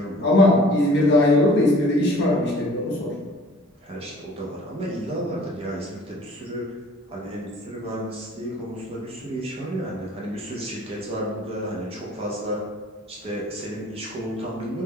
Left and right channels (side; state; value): both; normal; correlation 0.51